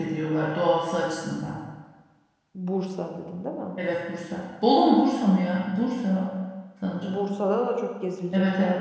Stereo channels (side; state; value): both; identical; correlation 1.00